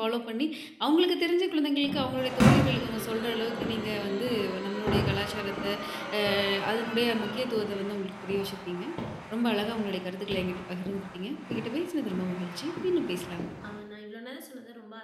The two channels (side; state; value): both; identical; correlation 1.00